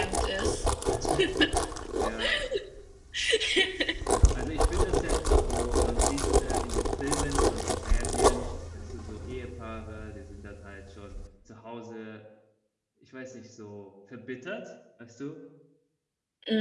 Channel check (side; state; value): both; identical; correlation 1.00